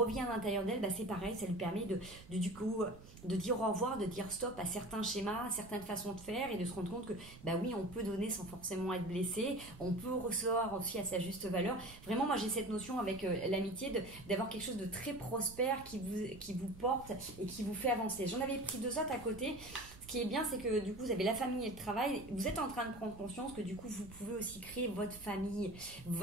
à l'intérieur d'elle, c'est pareil, ça lui permet du coup de dire au revoir, de dire stop à certains schémas, à certaines façons de faire et de se rendre compte que oui, on peut donner sans forcément être blessé, on peut recevoir aussi à sa juste valeur. Vraiment, moi j'ai cette notion avec l'amitié d'avoir quelque chose de très prospère qui vous porte et qui vous fait avancer. J'en avais pris deux autres à côté. Ce qui est bien, c'est que du coup, vous avez la famille et le travail. Vous êtes en train de prendre conscience que du coup, vous pouvez aussi créer votre famille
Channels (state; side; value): noise; right; rumble, 18 dB below the sound